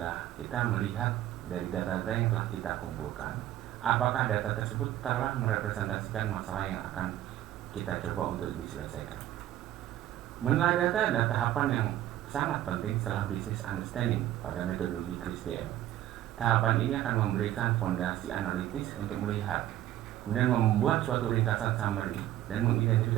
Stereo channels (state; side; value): quieter; left; 13.1 dB